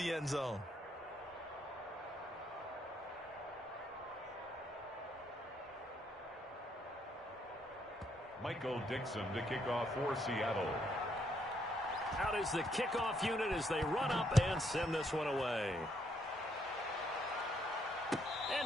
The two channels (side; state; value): both; normal; correlation 0.72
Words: end zone. Michael Dixon to kick off for Seattle. Out is the kickoff unit as they run up and send this one away. And